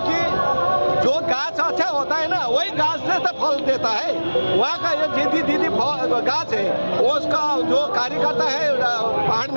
जो गाछ अच्छा होता है ना वही गाछ से तो फल देता है। वहाँ का ये दीदी गाछ है वो उसका जो कार्यकर्ता है पहाड़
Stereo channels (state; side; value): inverted; both; correlation -1.00